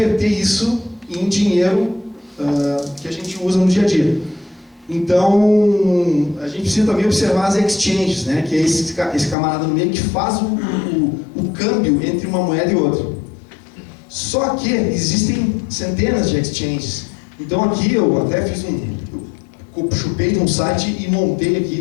isso em dinheiro que a gente usa no dia a dia. Então, a gente precisa também observar as exchanges, né? Que é esse camarada no meio que faz o câmbio entre uma moeda e outra. Só que existem centenas de exchanges. Então aqui eu até fiz eu chupei de um site e montei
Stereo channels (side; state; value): right; drops out; at 9.3 s